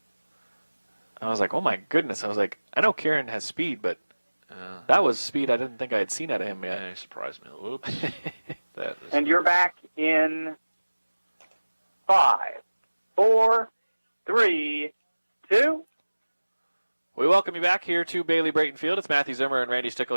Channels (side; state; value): both; inverted; correlation -1.00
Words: I was like, oh my goodness. I was like, I know Kieran has speed, but that was speed I didn't think I had seen out of him yet. Yeah, he surprised me. Oops. That is... And you're back in 5, 4, 3, 2. We welcome you back here to Bailey Brayton Field. It's Matthew Zimmer and Randy Stickle